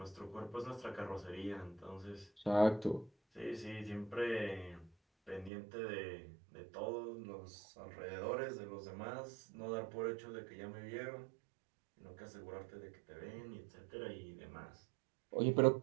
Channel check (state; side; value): drops out; left; at 5.5 s